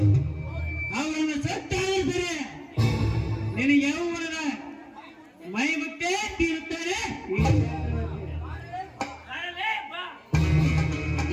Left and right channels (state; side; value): identical; both; correlation 1.00